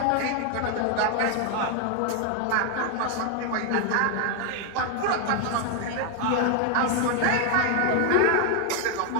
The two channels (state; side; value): different; both; correlation 0.00